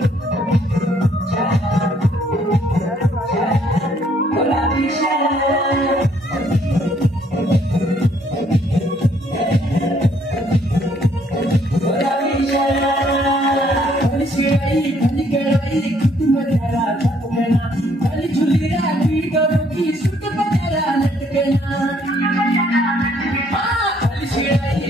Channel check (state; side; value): normal; both; correlation 0.66